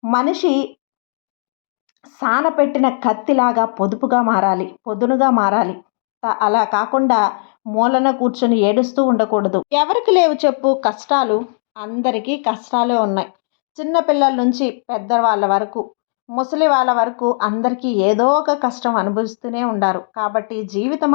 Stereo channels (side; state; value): right; silent; digital silence